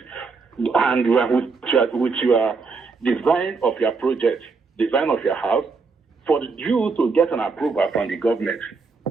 and with your design of your project, design of your house, for you to get an approval from the government.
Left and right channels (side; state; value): left; quieter; 4.5 dB